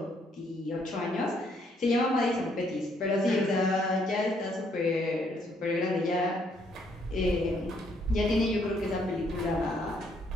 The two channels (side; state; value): both; normal; correlation 0.70